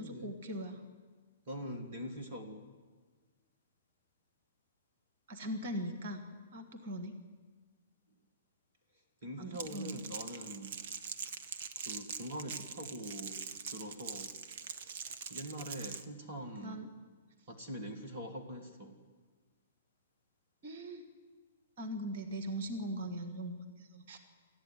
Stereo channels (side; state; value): both; inverted; correlation -0.31